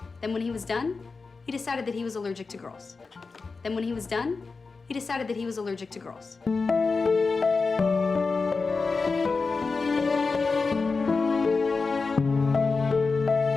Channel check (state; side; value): quieter; right; 4.3 dB